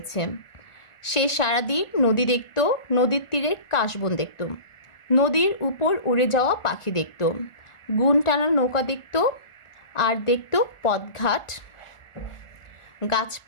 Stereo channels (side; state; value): right; late; 1.4 ms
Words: সে সারাদিন নদী দেখত, নদীর তীরের কাশবন দেখত, নদীর উপর উড়ে যাওয়া পাখি দেখত, গুণ টানা নৌকা দেখত, আর দেখত পথঘাট,